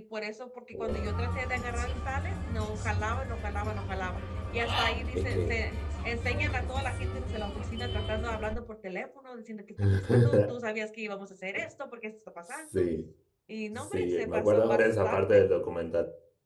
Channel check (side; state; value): both; identical; correlation 1.00